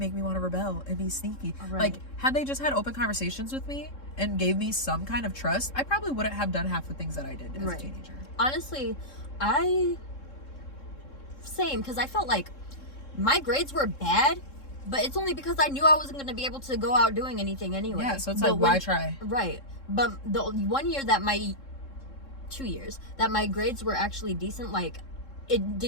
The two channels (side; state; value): right; late; 3.7 ms